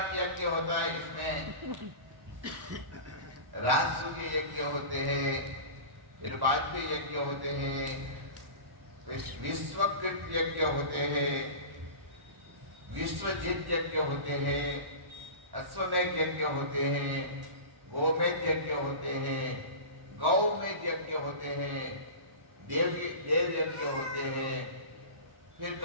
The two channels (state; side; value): late; left; 1.4 ms